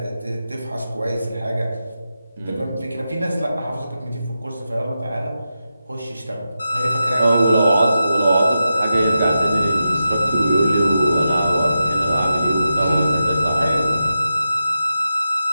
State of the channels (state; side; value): inverted; both; correlation -0.89